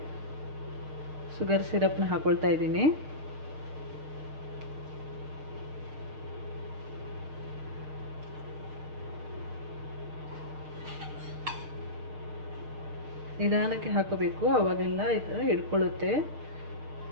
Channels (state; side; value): late; left; 6.5 ms